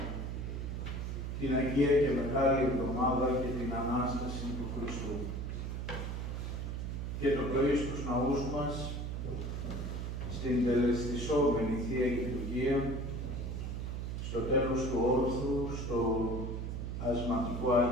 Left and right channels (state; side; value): noise; right; hum, 4 dB below the sound